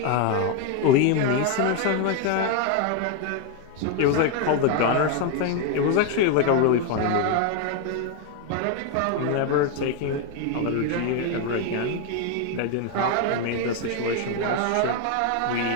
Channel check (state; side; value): different; both; correlation 0.01